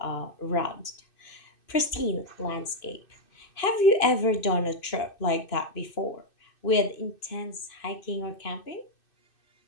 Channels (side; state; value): right; late; 2.6 ms